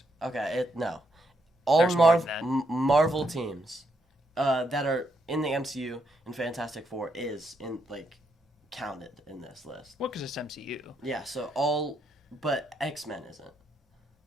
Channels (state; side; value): normal; both; correlation 0.77